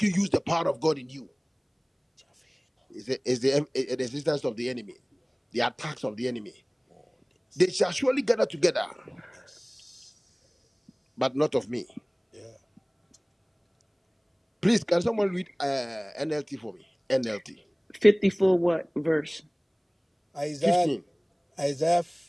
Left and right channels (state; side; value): identical; both; correlation 1.00